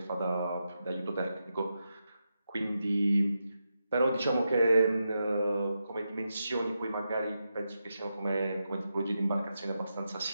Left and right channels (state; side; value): inverted; both; correlation -0.87